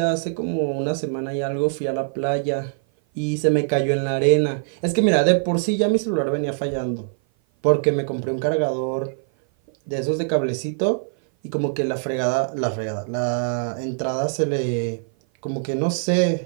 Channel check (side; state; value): left; silent; 56 dB below the other